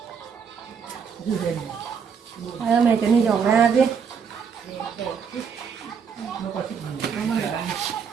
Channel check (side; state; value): left; quieter; 6.6 dB